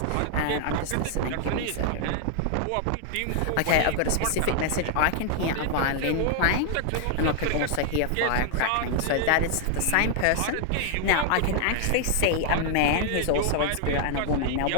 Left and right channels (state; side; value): different; both; correlation 0.00